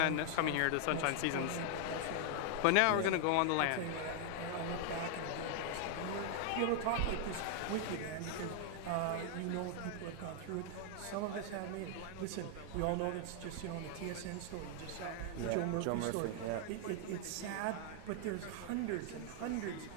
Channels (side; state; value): both; different; correlation 0.00